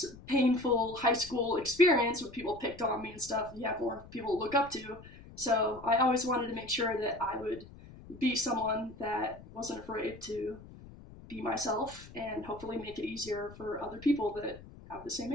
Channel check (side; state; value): left; noise; rumble, 18 dB below the sound